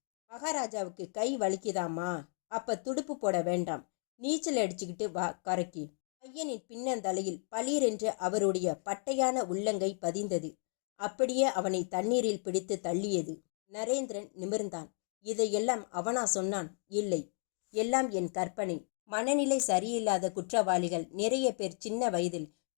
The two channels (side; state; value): right; silent; 55 dB below the other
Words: மகாராஜாவுக்கு கை வலிக்குதாமா? அப்ப துடுப்பு போட வேண்டாம், நீச்சல் அடிச்சுக்கிட்டு வா கரைக்கு. பையனின் பின்னந்தலையில் பளீரென்று அவருடைய பட்டையான உள்ளங்கை பதிந்தது. அப்படியே அவனை தண்ணீரில் பிடித்து தள்ளியது. நரேந்திரன் நிமிர்ந்தான். இதையெல்லாம் அவனா சொன்னான்? இல்லை, எல்லாம் என் கற்பனை. மனநிலை சரியில்லாத குற்றவாளிகள் நிறைய பேர் சின்ன வயதில்